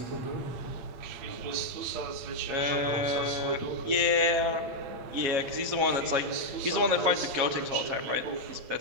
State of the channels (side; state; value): left; late; 7.4 ms